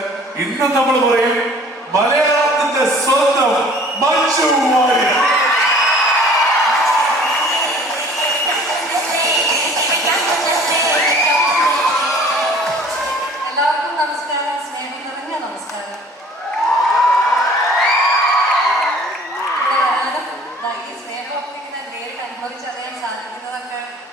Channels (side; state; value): both; normal; correlation 0.50